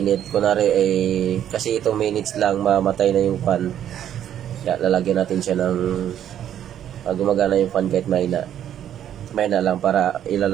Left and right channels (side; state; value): left; quieter; 10.4 dB